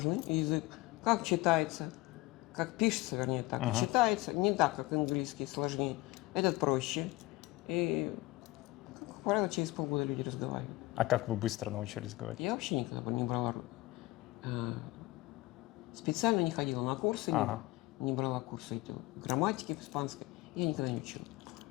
язык. Как читается, как пишется, вернее, так и читается. Не так, как английский, сложнее. Этот проще. И, как правило, через полгода люди разговаривают. А как вы быстро научились говорить? Я вообще никогда не брала... Специально не ходила на курсы, не брала курсы грамматики испанской. Я никогда не учила.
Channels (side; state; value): right; quieter; 20.3 dB